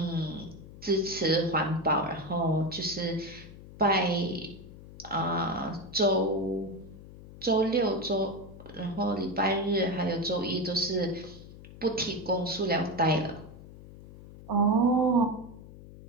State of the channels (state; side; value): noise; left; hum, 17 dB below the sound